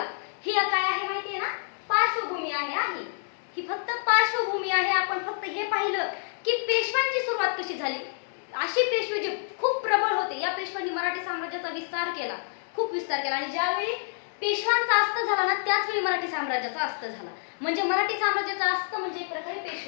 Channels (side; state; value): right; silent; digital silence